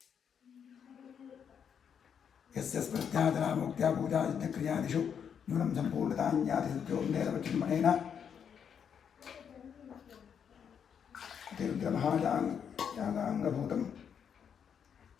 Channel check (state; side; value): quieter; right; 7.7 dB